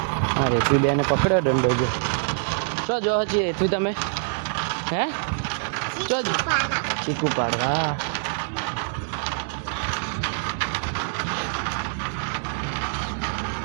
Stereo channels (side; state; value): left; silent; 62 dB below the other